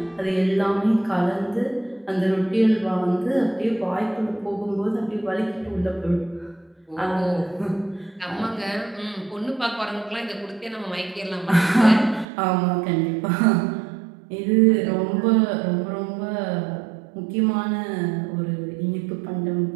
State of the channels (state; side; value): drops out; left; at 12.2 s